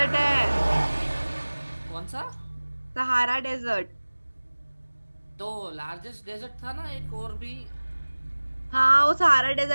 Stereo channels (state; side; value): inverted; both; correlation -1.00